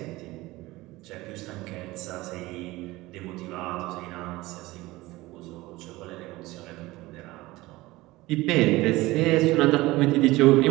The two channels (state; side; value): quieter; left; 19.5 dB